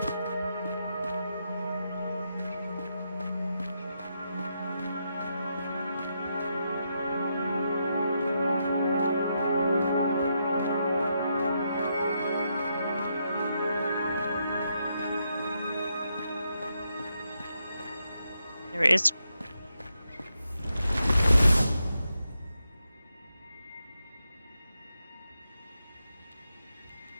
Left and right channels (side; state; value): both; inverted; correlation -0.82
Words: There it is.